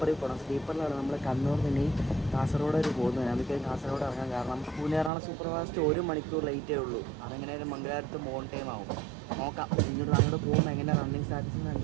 പോകണം. സ്ലീപ്പറിലാണ് നമ്മൾ കണ്ണൂർ നിന്ന് കാസർഗോഡ് വരെ പോകുന്നത്. നമുക്ക് കാസർഗോഡ് ഇറങ്ങാം. കാരണം പൂനെ-എറണാകുളം സൂപ്പർ ഫാസ്റ്റ് 1 മണിക്കൂർ ലേറ്റേ ഉള്ളൂ. അതെങ്ങനെയായാലും മംഗലാപുരത്ത് മോൺ ടൈം ആവും. നോക്കാം ഇങ്ങോട്ട് അങ്ങോട്ട് പോകുമ്പോൾ എങ്ങനെ റണ്ണിങ് സ്റ്റാറ്റസ്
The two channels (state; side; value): drops out; left; at 5.1 s